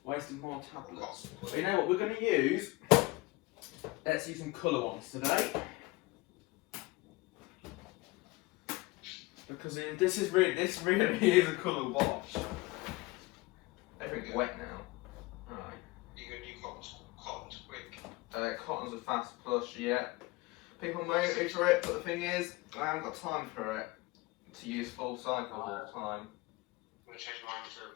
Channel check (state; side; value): quieter; right; 22.1 dB